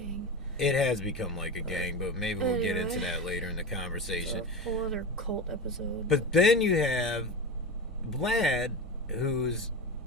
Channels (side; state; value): both; normal; correlation 0.24